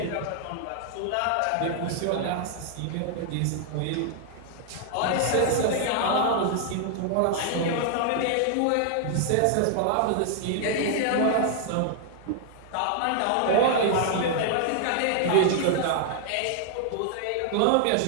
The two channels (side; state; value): both; different; correlation -0.01